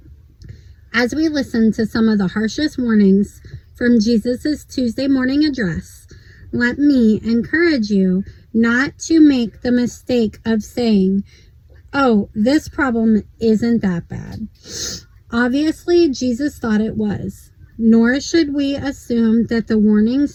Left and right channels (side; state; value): both; identical; correlation 1.00